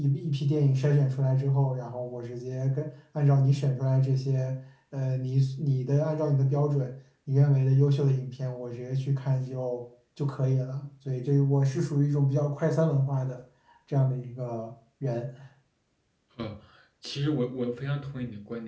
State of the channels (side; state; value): both; identical; correlation 1.00